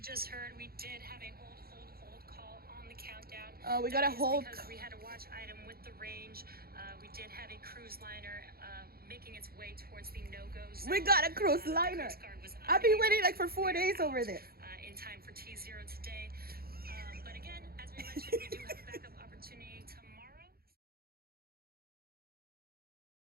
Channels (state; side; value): late; left; 0.44 ms